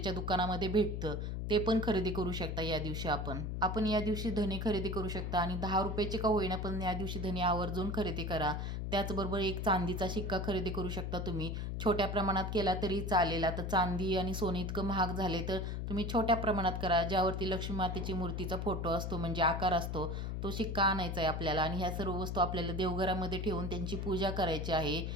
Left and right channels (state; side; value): noise; left; hum, 3 dB below the sound